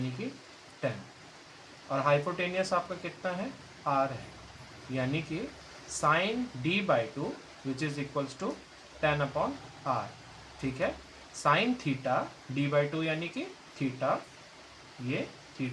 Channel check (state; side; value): identical; both; correlation 1.00